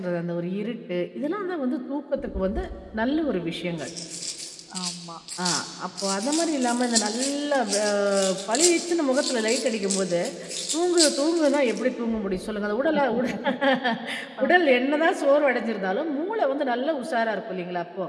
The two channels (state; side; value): identical; both; correlation 1.00